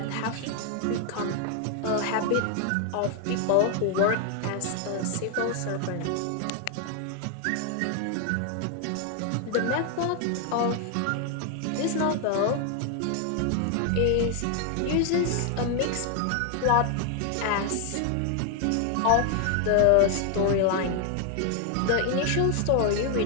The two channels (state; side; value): different; both; correlation 0.00